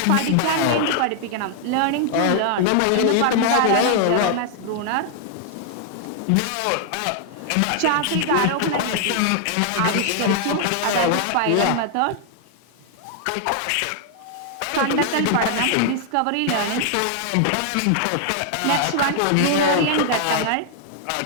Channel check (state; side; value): different; both; correlation 0.00